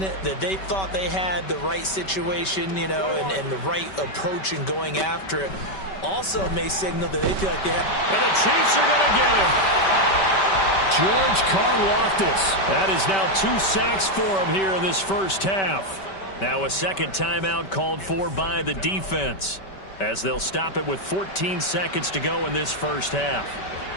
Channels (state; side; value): late; right; 5.2 ms